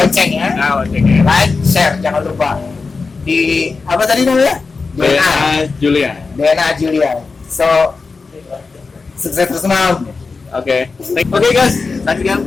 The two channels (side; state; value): right; quieter; 4.4 dB